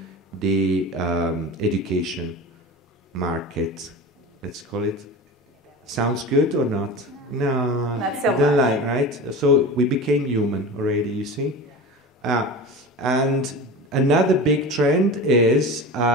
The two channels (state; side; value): normal; both; correlation 0.31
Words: the education market. Let's call it. Sounds good or not? No, not so don't much. like, right? So we became human already, you see? And another big trend is